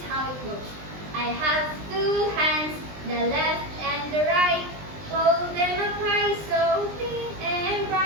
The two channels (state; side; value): late; left; 20 ms